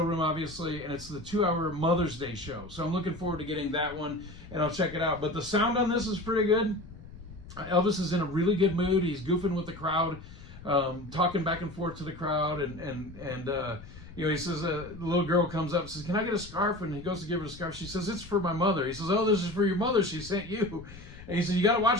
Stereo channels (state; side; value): noise; left; rumble, 17 dB below the sound